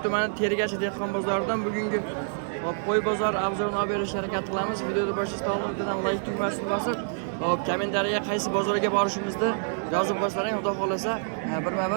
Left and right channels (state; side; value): silent; left; digital silence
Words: tumani Tergachi dehqon bozoridan bugungi qo'y bozori obzorini olib berishga harakat qilamiz. Videoni boshlashdan oldin like tugmasini bosib, kommentariyaga qaysi bozorga borishimizni yozib qo'ysaring, xudo xolasa